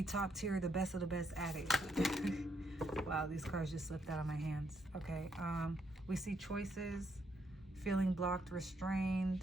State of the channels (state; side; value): normal; both; correlation 0.75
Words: top tier, the best of the best at it. Wow, these cards just slipped out of my hands. Okay, we see choices, feeling blocked, restrained.